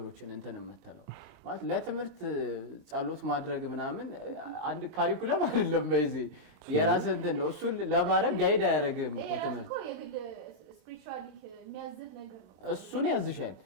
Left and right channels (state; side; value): late; left; 22 ms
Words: እንትን የምትለው ማለት ለትምህርት ጸሎት ማድረግ ምናምን አንድ ካሪኩለም አይደለም በዚህ የራስ እንትን ነው እሱ ለማድረግ ጋይድ አያደርግም እኮ ትምህርት እሱን ያዝሻል